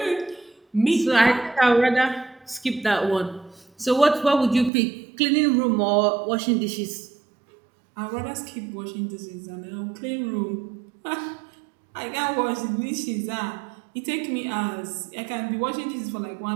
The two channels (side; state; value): left; drops out; at 4.7 s